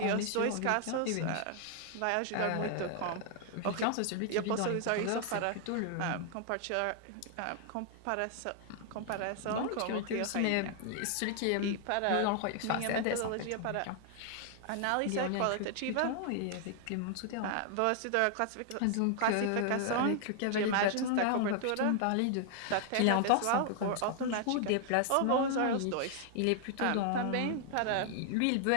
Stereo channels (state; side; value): different; both; correlation 0.00